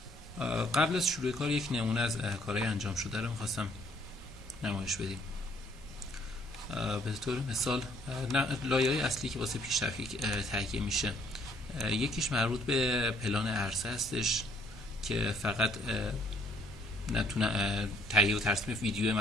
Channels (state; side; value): normal; both; correlation 0.64